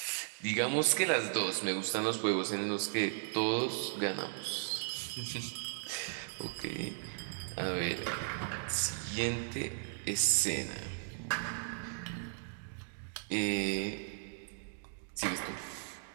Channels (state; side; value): silent; left; digital silence